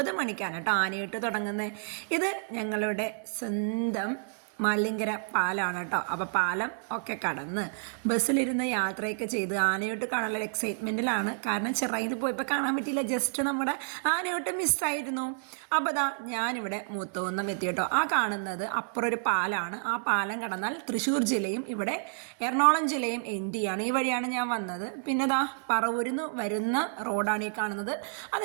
മണിക്കാണ് കേട്ടോ ആനയൂട്ട് തുടങ്ങുന്നത്. ഇത് ഞങ്ങളുടെ സ്വന്തം മല്ലിങ്കര പാലമാണ് കേട്ടോ. അപ്പോൾ പാലം ഒക്കെ കടന്ന് ബസ്സിലിരുന്ന് യാത്രയൊക്കെ ചെയ്ത് ആനയൂട്ട് കാണാനുള്ള എക്സൈറ്റ്മെൻറ്റിലാണ്. കാരണം ചിറയിൽ പോയപ്പോൾ കാണാൻ പറ്റിയില്ല, ജസ്റ്റ് നമ്മുടെ ആനയൂട്ട് മിസ്സായിരുന്നു. അപ്പോൾ ദാ ഞാനിവിടെ മൂത്തുകുന്നം എത്തി കേട്ടോ. ആ കാണുന്നത് അപ്പുറം ഒരു പാലമാണ്. ആ പാലം കടന്നാൽ തൃശ്ശൂർ ജില്ലയും ഇവിടെ എറണാകുളം ജില്ലയും എൻഡ് ചെയ്യാണ്. ഈ വഴിയാണ് ഞാൻ വന്നത്. പിന്നെ ദാ പറവൂരിൽ നിന്ന് വരുന്ന റോഡാണ് ഈ കാണുന്നത്.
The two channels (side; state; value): left; silent; digital silence